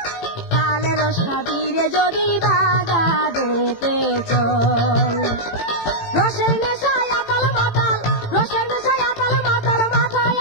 তালে রস খাবি রে যদি বাগানেতে চল। রসের নেশায় আতাল মাতাল, রসের নেশায় আতাল মাতাল, মাথায়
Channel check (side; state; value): right; late; 18 ms